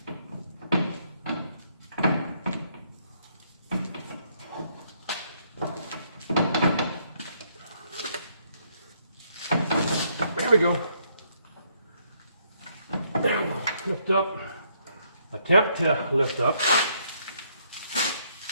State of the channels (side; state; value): both; inverted; correlation -0.71